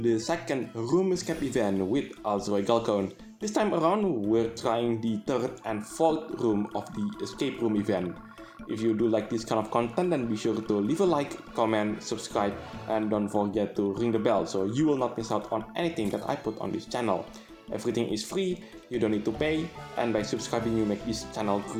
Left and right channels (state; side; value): identical; both; correlation 1.00